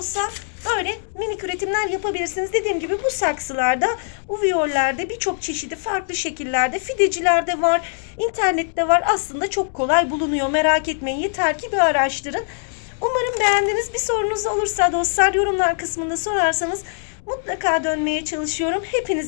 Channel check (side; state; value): right; silent; 65 dB below the other